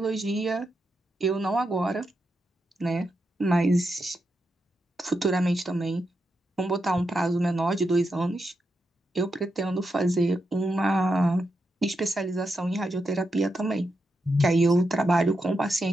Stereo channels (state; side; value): normal; both; correlation 0.85